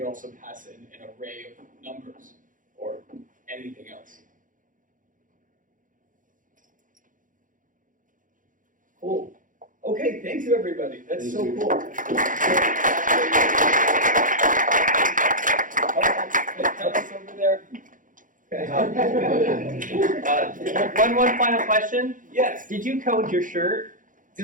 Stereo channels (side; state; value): left; late; 0.38 ms